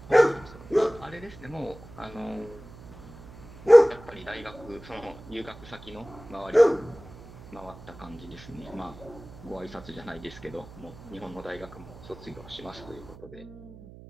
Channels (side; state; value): right; noise; hum, 18 dB below the sound